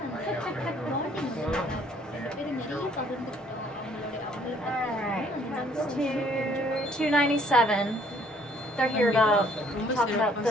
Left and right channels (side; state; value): both; normal; correlation 0.62